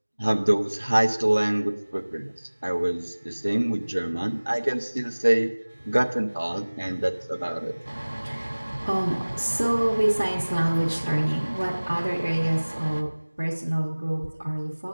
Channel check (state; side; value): inverted; both; correlation -1.00